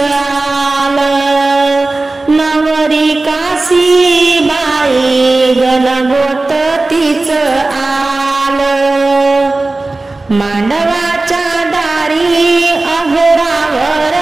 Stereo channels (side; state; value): left; quieter; 3.2 dB